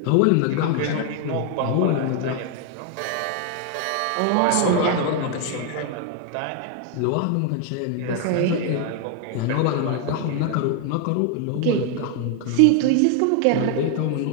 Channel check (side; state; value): both; different; correlation 0.00